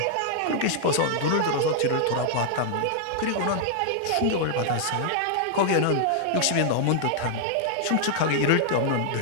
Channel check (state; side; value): different; both; correlation -0.01